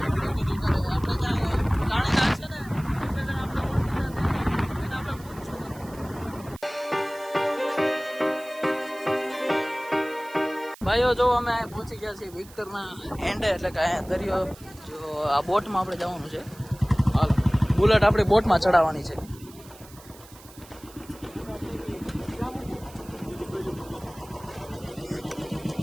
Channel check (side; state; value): right; noise; hiss, 21 dB below the sound